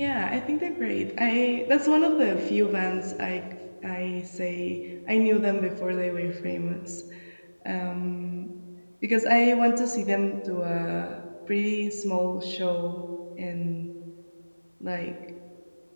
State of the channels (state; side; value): inverted; both; correlation -1.00